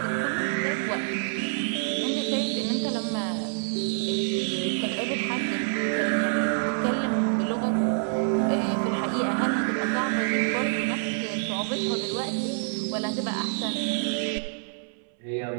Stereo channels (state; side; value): silent; left; 60 dB below the other